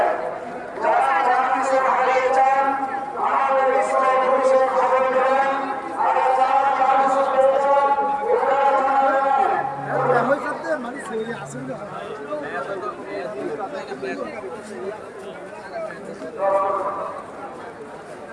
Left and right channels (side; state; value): both; identical; correlation 1.00